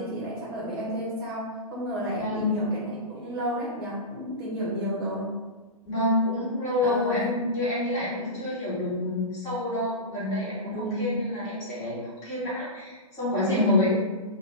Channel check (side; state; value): both; normal; correlation -0.18